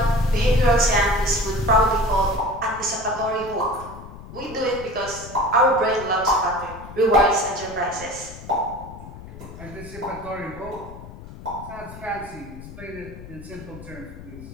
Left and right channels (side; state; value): left; noise; rumble, 15 dB below the sound